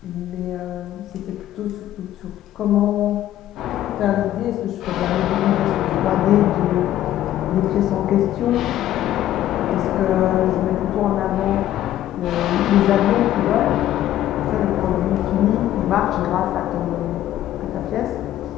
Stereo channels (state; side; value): quieter; right; 12.9 dB